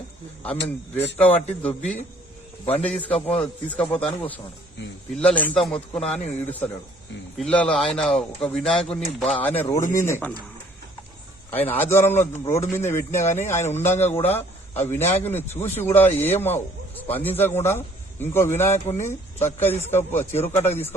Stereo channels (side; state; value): both; normal; correlation 0.59